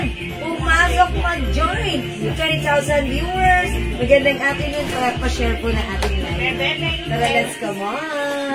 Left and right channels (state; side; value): identical; both; correlation 1.00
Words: Pumasok mag-join! 20,000 viewers! Magandang afternoon, pa-share po na ating live. Tara, let's come